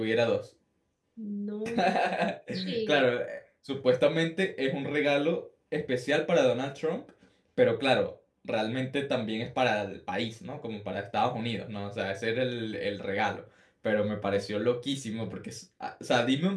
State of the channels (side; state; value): both; identical; correlation 1.00